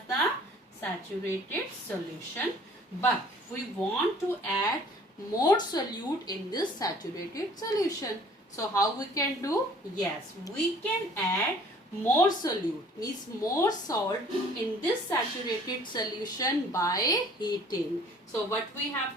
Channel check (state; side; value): normal; both; correlation 0.53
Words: the saturated solution. But we want to add more solute in this saturated solution. So how we can do? Yes, we can add more solute, means more salt in this saturated solution by heating. So what we